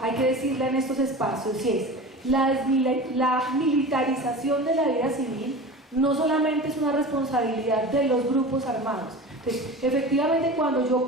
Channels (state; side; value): normal; both; correlation 0.33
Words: hay que decirla en estos espacios, y es la militarización de la vida civil no solamente es una responsabilidad de los grupos armados. Entonces, efectivamente, cuando yo